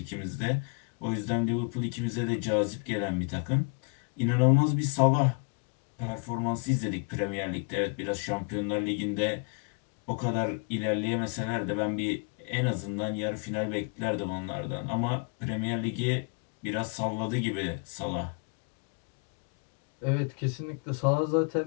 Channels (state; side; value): quieter; right; 34.8 dB